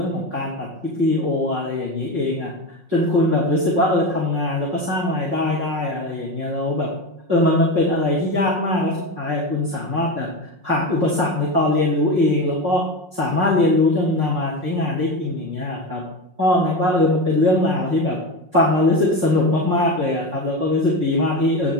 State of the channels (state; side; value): late; left; 5.5 ms